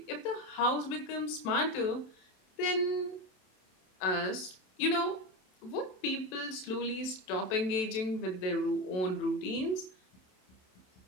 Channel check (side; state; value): right; late; 27 ms